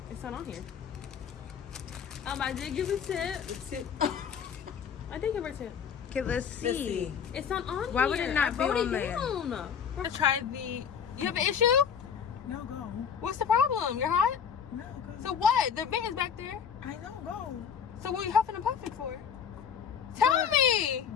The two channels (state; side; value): quieter; right; 7.4 dB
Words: It's not on here. I did give a tip. I did give her a tip. Okay, let's see. It's not on here. Why would it not be wrote on it there? down. I tried the. You have an issue? No, go. What's the problem? You're hot. No, go. So what? The vent is back there. I know, go. So what are you huffing and puffing for? Tell me.